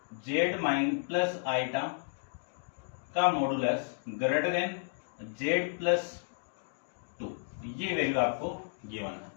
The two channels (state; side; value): silent; right; digital silence